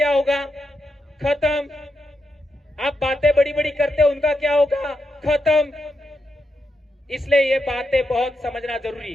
होगा? खत्म। आप बातें बड़ी बड़ी करते हो, उनका क्या होगा? खत्म। इसलिए ये बातें बहुत समझना जरूरी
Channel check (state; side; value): normal; both; correlation 0.84